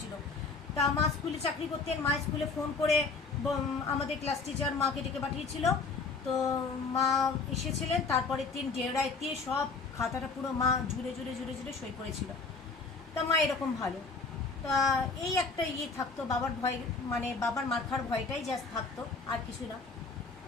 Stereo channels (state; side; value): quieter; right; 4.3 dB